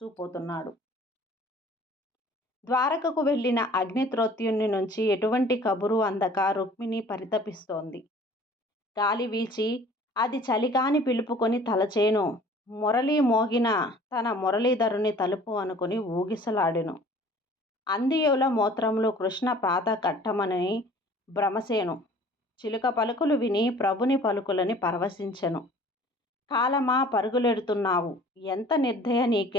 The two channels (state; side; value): normal; both; correlation 0.50